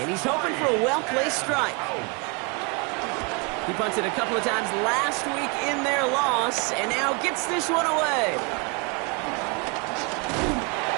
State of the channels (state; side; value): quieter; left; 31.6 dB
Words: And he's hoping for a well-placed strike. He punted a couple of times last week in their loss, and now gets this one away.